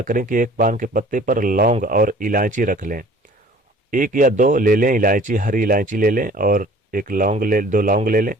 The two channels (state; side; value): normal; both; correlation 0.50